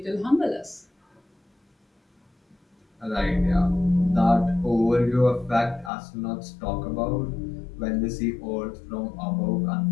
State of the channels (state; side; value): drops out; right; at 5.9 s